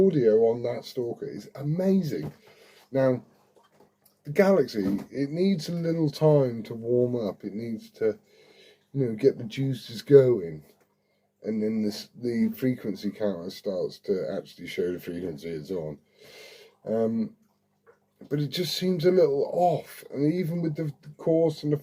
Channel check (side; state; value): both; identical; correlation 1.00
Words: on that Stalker is amazing. Now, the Galaxy, it needs a little time to warm up. It needs to, get the juices going. And then the frequency counter starts to actually show the frequency it's on. But it just seems a little off. And even with the coarse and the